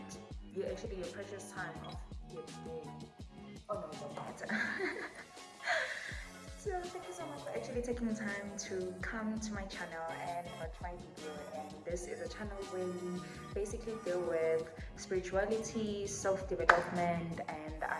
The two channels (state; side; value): identical; both; correlation 1.00